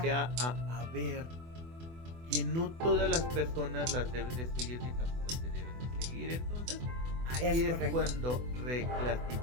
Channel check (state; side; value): late; left; 24 ms